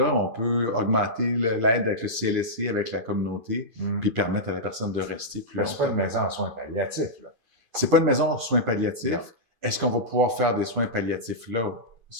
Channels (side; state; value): left; late; 2.5 ms